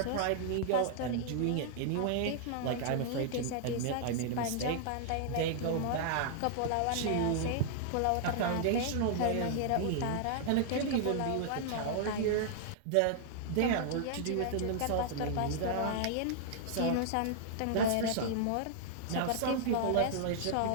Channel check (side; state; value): both; different; correlation -0.01